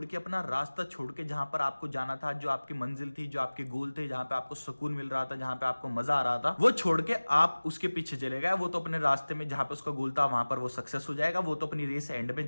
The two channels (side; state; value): both; inverted; correlation -1.00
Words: के, अपना रास्ता छोड़ के, जहां पर आपको जाना था, जो आपकी मंजिल थी, जो आपके गोल थे, जहां पे आपको सुकून मिल रहा था, जहां पे आपको मजा आ रहा था, वो छोड़ के आप उसके पीछे चले गए। वो तो अपने रास्ते में जहां पे उसका गोल था वहां पर वो सक्सेस हो जाएगा, वो तो अपनी रेस एंड में